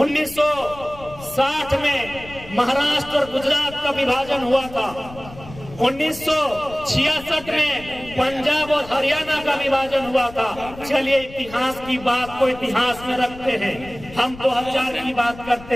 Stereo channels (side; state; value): left; noise; rumble, 17 dB below the sound